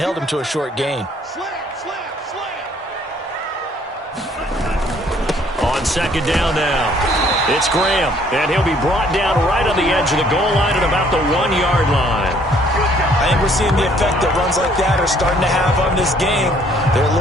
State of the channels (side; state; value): both; normal; correlation 0.62